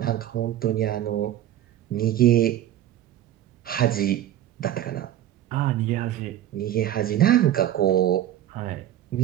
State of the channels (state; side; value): quieter; left; 12.2 dB